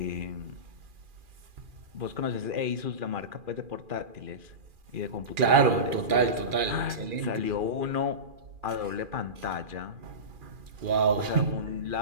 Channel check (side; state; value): left; late; 2.4 ms